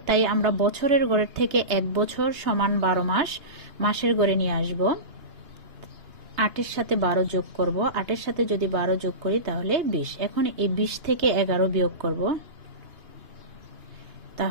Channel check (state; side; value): late; left; 2.9 ms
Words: তাই আমরা বছরের গড়ের থেকে 1 বছর সমান 12 মাস মাসের গড়ে নিয়ে আসব। 8 এর সাথে 12 যোগ করব, 8 এর সাথে যদি 12 যোগ করি তাহলে 20। এখন এই 20 থেকে 11 বিয়োগ করব,